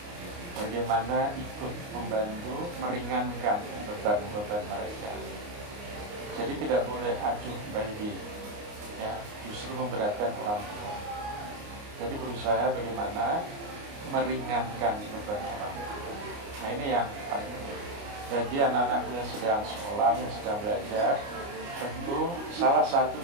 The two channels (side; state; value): left; late; 29 ms